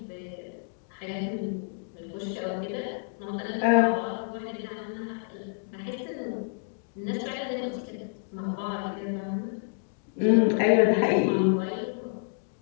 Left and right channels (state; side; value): silent; right; digital silence